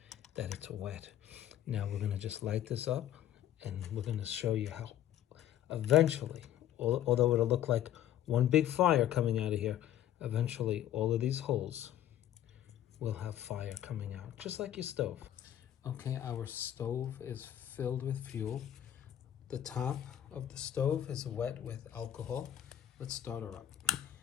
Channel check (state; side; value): quieter; right; 11.5 dB